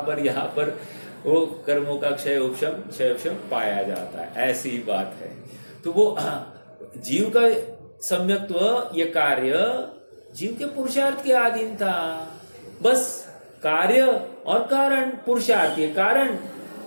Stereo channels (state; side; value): inverted; both; correlation -1.00